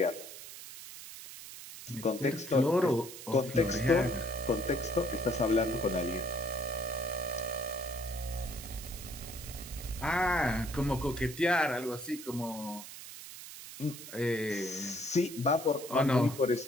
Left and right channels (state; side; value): noise; right; hiss, 13 dB below the sound